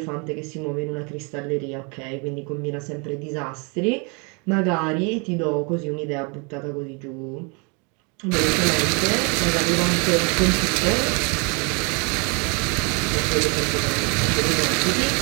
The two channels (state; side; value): quieter; left; 33.0 dB